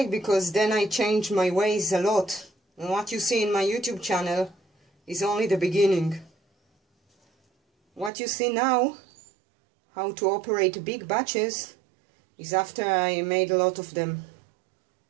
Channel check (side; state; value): left; drops out; at 8.1 s